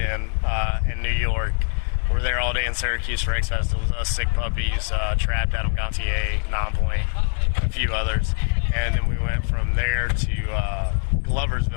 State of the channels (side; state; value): right; silent; 63 dB below the other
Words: New York. We were there all day in Syracuse for X Fest. It was us, Sick Puppies, Trapped, Adam Gontier, Nonpoint, a few others. And then we went from there to